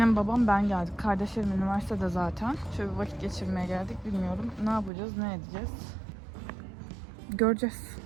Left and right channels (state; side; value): drops out; left; at 4.9 s